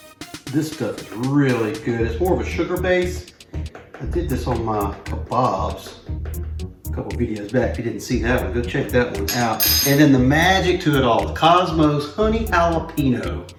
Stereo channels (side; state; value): both; identical; correlation 1.00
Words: This stuff is really good. It's more of a sugar base. I did this on my kebabs a couple videos back. If you didn't see that one, go check that one out. And then the magic to it all, the Kosmos Honey Jalapeno.